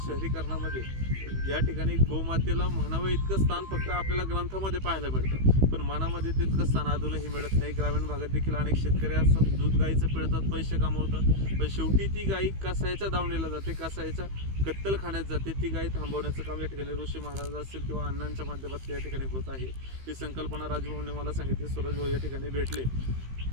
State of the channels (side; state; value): left; late; 15 ms